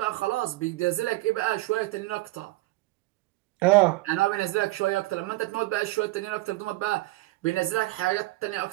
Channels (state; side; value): quieter; left; 19.8 dB